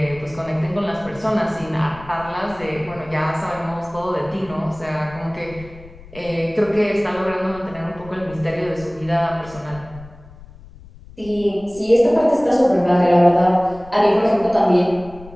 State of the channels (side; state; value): left; noise; rumble, 20 dB below the sound